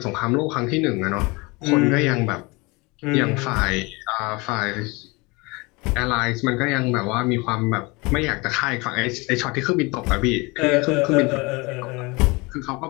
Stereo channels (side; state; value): right; quieter; 25.8 dB